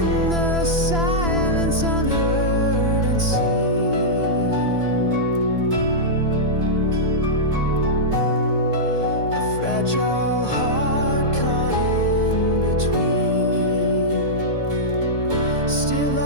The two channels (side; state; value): left; late; 3.0 ms